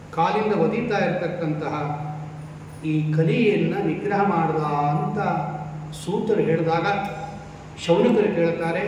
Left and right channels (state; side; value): identical; both; correlation 1.00